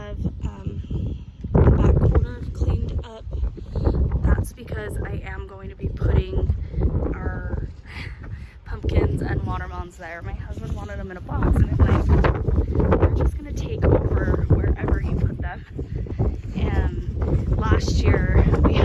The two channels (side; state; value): both; identical; correlation 1.00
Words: the back corner cleaned up. That's because I am going to be putting our pumpkins and watermelons there. My husband wanted them in a box, and I'm like, we're just gonna take over wherever you put them. And last year we